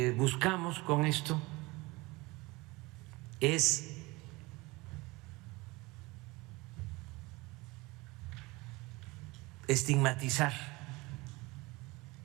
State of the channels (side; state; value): left; quieter; 23.1 dB